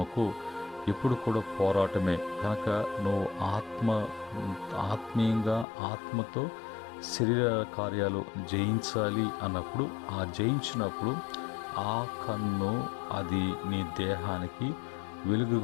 ఎప్పుడు కూడా పోరాటమే. కనుక నువ్వు ఆత్మీయంగా ఆత్మతో శరీర కార్యాలు జయించాలి అన్నప్పుడు, ఆ జయించినప్పుడు ఆ కన్ను అది నీ దేహానికి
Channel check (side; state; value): right; drops out; at 5.7 s